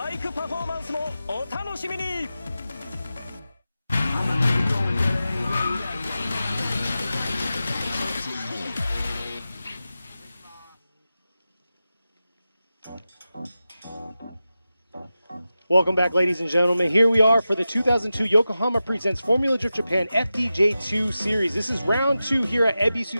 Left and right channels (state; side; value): inverted; both; correlation -0.93